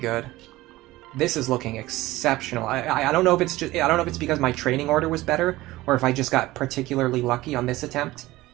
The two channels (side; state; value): left; quieter; 18.0 dB